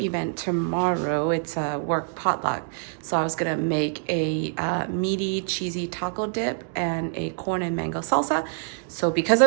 tomorrow. It's a work potluck. So I was gonna make a meaty cheesy taco dip and a corn and mango salsa. So because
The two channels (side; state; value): left; silent; digital silence